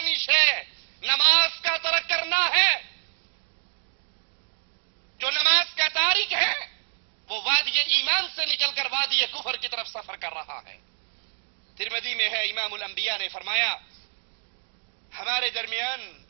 شے نماز کا ترک کرنا ہے. جو نماز کا تارک ہے وہ وادی ایمان سے نکل کر وادی کفر کی طرف سفر کر رہا ہے. ترمذی میں ہے امام الانبیاء نے فرمایا ہمارے درمیان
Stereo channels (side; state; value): left; silent; 60 dB below the other